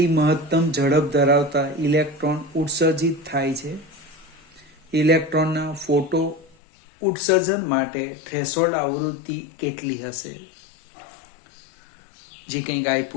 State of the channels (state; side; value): drops out; right; at 6.6 s